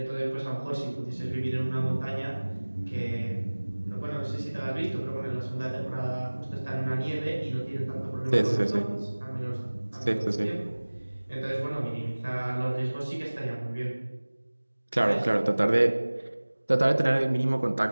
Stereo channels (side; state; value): both; inverted; correlation -1.00